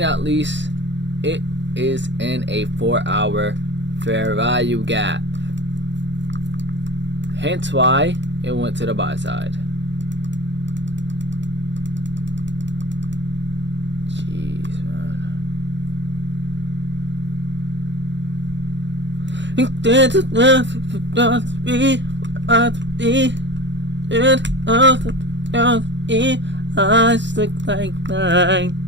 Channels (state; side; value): late; left; 0.52 ms